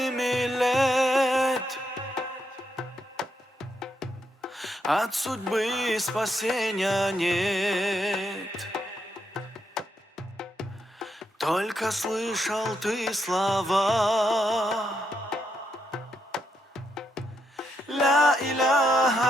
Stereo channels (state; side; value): normal; both; correlation 0.80